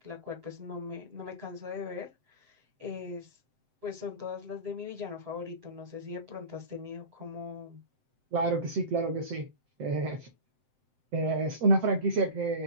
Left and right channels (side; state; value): left; late; 7.8 ms